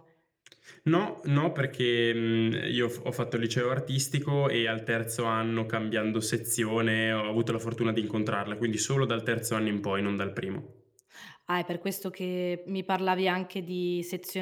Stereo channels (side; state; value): both; identical; correlation 1.00